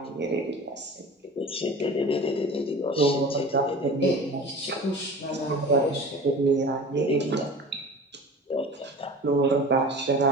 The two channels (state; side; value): normal; both; correlation 0.37